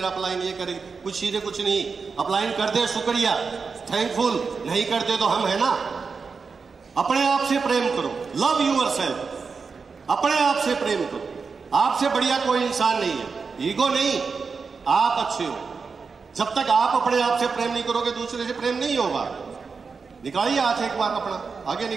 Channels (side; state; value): left; quieter; 5.0 dB